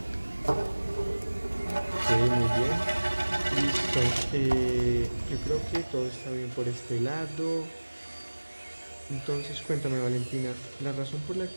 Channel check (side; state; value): both; inverted; correlation -1.00